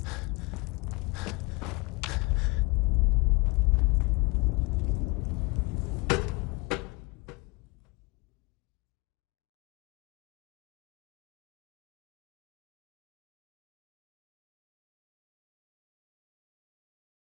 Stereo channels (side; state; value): right; quieter; 25.1 dB